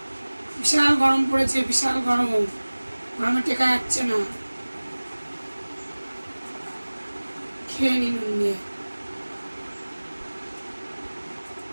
বিশাল গরম পড়েছে, বিশাল গরম, গরমে টেকা যাচ্ছে না। খেয়ে নি নুন দিয়ে।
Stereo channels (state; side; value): inverted; both; correlation -1.00